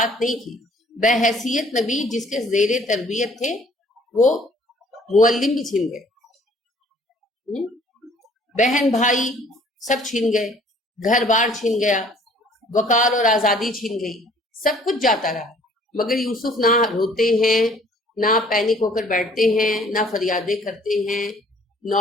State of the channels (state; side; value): normal; both; correlation 0.57